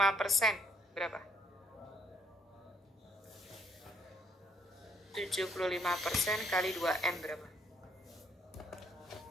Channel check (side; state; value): both; normal; correlation 0.67